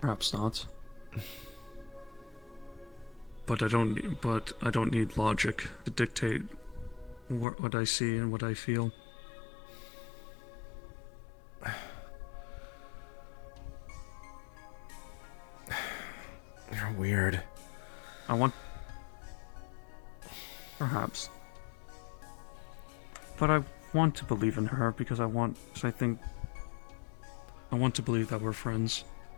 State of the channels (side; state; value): right; drops out; at 7.5 s